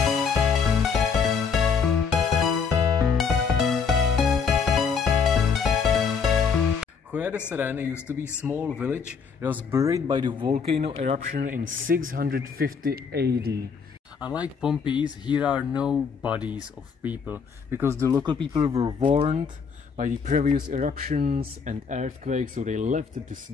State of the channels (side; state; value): right; quieter; 5.9 dB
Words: Joya de Serén used to be a small village. It was buried by the volcano eruption in 650 AD. Unlike Pompeii, here are no bodies of people, because the local people were warned by the previous eruptions and earthquakes, so they left the